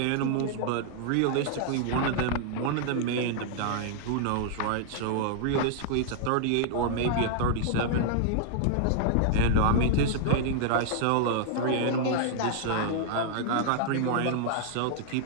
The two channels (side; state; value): both; different; correlation -0.01